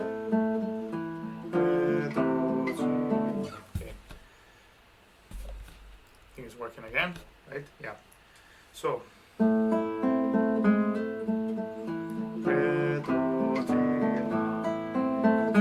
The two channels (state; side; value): identical; both; correlation 1.00